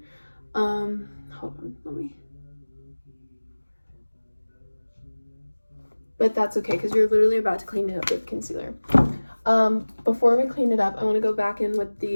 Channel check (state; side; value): inverted; both; correlation -1.00